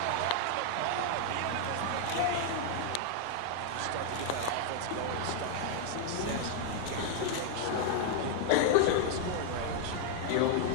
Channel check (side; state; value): both; different; correlation 0.00